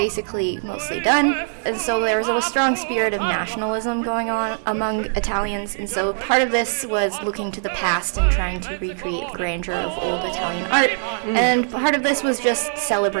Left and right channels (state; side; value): silent; left; digital silence